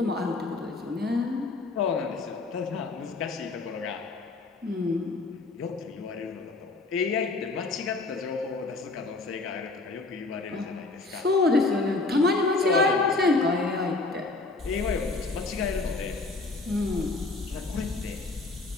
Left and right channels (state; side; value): quieter; right; 3.5 dB